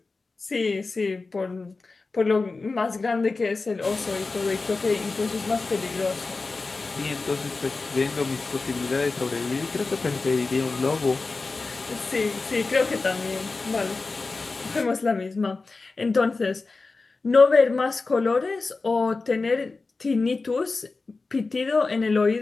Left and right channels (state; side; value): quieter; right; 3.9 dB